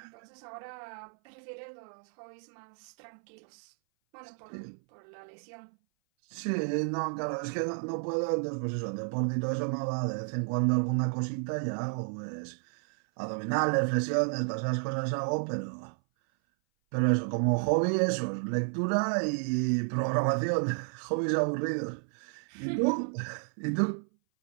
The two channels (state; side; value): silent; left; 57 dB below the other